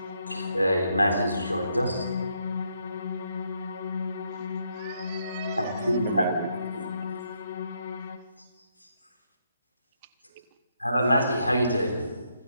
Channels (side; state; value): both; inverted; correlation -0.76